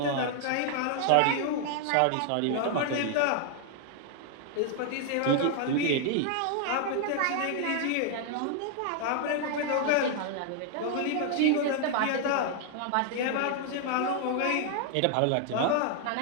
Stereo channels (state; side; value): different; both; correlation 0.00